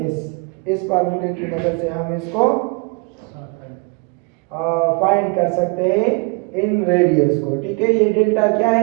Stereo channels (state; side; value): quieter; left; 30.4 dB